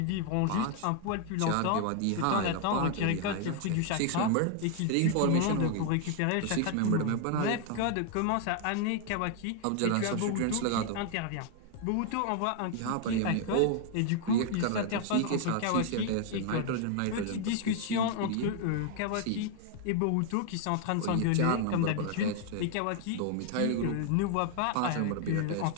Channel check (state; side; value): different; both; correlation 0.00